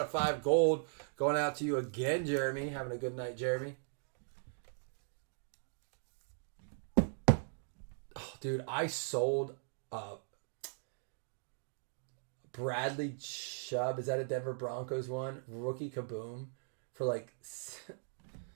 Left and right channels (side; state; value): left; silent; digital silence